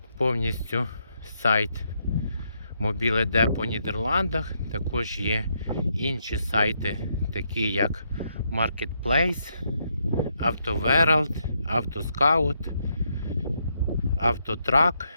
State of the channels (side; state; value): both; inverted; correlation -0.78